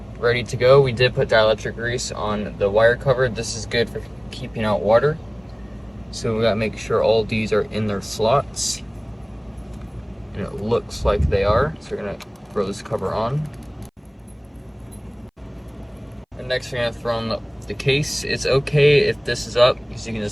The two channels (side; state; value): both; identical; correlation 1.00